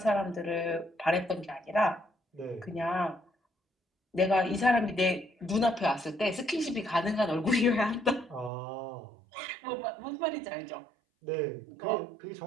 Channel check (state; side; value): drops out; left; at 8.5 s